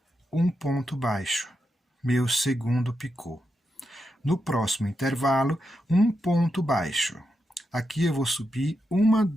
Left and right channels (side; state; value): both; normal; correlation 0.86